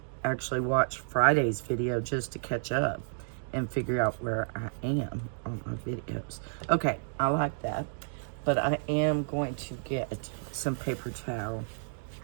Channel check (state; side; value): silent; left; digital silence